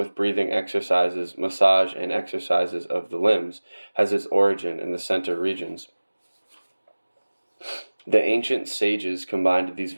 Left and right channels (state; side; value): inverted; both; correlation -1.00